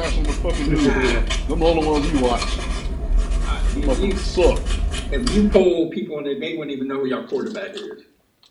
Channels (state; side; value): identical; both; correlation 1.00